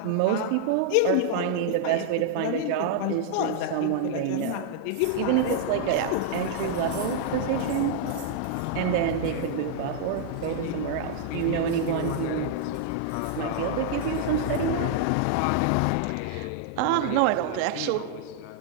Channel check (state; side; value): different; both; correlation -0.01